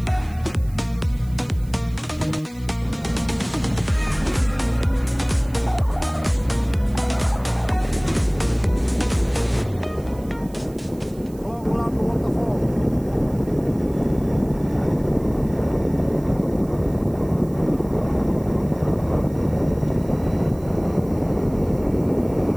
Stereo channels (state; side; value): noise; right; hiss, 26 dB below the sound